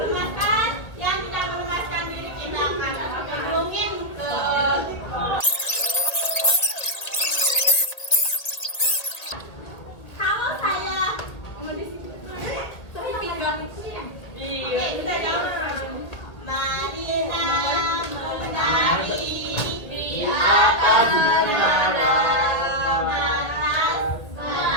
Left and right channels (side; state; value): right; late; 1.9 ms